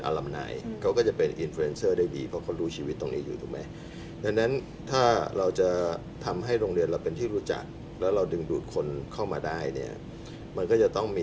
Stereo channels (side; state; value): both; identical; correlation 1.00